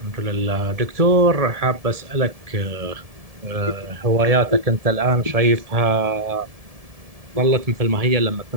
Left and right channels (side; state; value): left; late; 1.7 ms